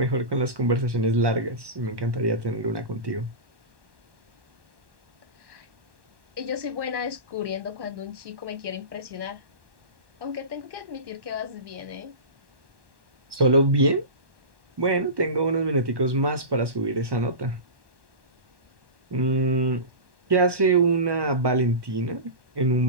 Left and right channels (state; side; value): late; left; 1.1 ms